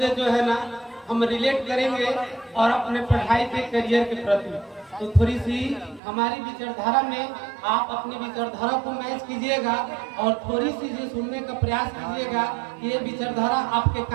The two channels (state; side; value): drops out; left; at 6.0 s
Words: जो है ना हम रिलेट करेंगे और अपने पढ़ाई के करियर के प्रति। तो थोड़ी सी हमारी विचारधारा में आप अपनी विचारधारा को मैच कीजिएगा और थोड़ी सी जो सुनने का प्रयास कीजिएगा कि ये विचारधारा आपके